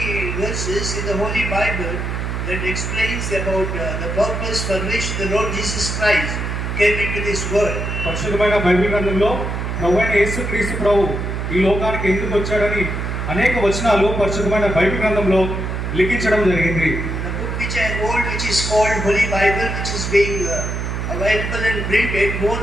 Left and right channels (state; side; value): noise; right; hum, 3 dB below the sound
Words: verses in the Holy Bible that explains about the purpose for which the Lord Jesus Christ came into this world. పరిశుద్ధమైన బైబిల్ గ్రంథంలో ప్రభువైన యేసుక్రీస్తు ప్రభు ఈ లోకానికి ఎందుకు వచ్చాడని అనేక వచనాలు పరిశుద్ధమైన బైబిల్ గ్రంథంలో లిఖించడం జరిగింది. The book which I hold, which is called Holy Bible, which is being available and printed more